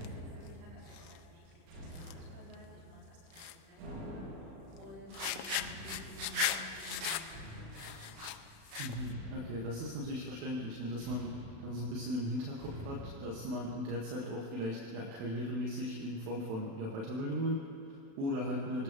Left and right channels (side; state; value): left; late; 36 ms